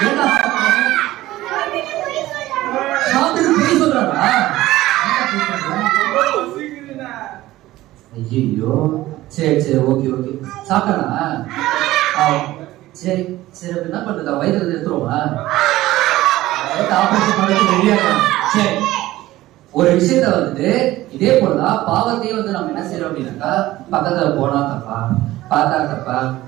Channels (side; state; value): left; quieter; 16.4 dB